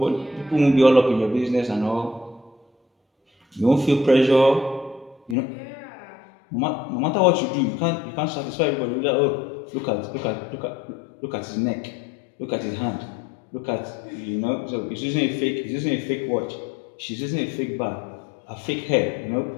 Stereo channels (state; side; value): drops out; right; at 5.4 s